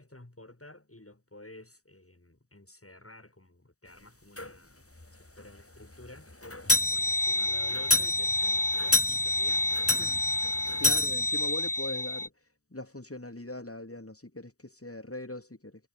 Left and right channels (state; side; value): late; right; 0.65 ms